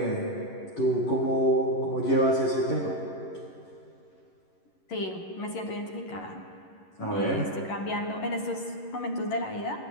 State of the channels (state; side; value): late; right; 11 ms